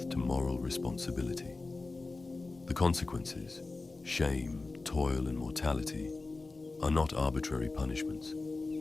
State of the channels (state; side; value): quieter; right; 3.5 dB